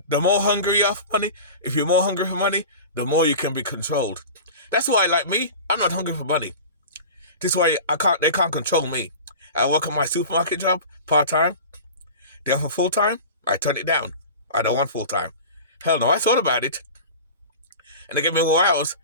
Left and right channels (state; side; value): inverted; both; correlation -0.34